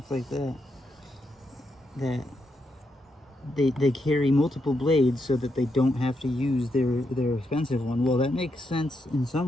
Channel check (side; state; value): both; normal; correlation 0.82